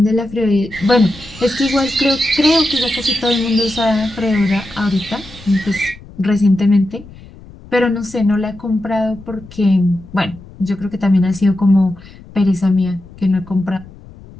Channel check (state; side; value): noise; left; rumble, 20 dB below the sound